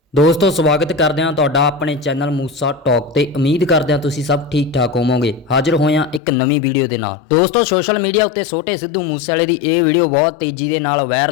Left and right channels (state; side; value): drops out; right; at 6.2 s